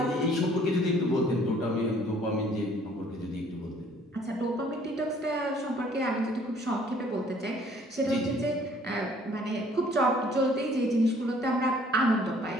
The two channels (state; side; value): normal; both; correlation 0.58